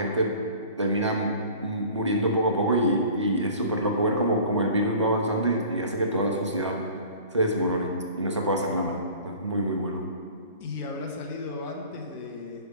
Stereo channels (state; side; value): inverted; both; correlation -0.45